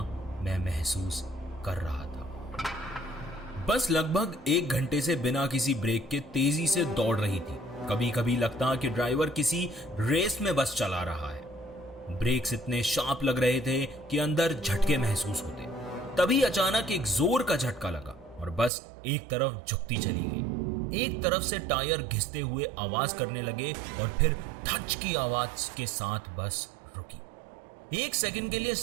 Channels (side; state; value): left; drops out; at 18.7 s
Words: मैं महसूस कर रहा था। बस लगभग 1 घंटे से बिना किसी ब्रेक के तेजी से दौड़ रही थी। कभी कभी लगता कि ड्राइवर किसी रेस में बस चला रहा है। ब्रेक्स इतने शार्प लग रहे थे कि अंदर झटके महसूस होते। तभी अचानक एक जोर का झटका लगा और बस एक तरफ झुकती चली गई। एक तरफ से टायर घिसते हुए आवाज करने लगे और फिर धच की आवाज के साथ बस रुकी। 1 सेकंड के लिए